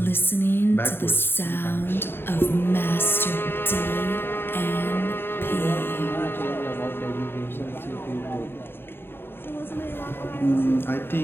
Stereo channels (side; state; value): right; late; 0.11 ms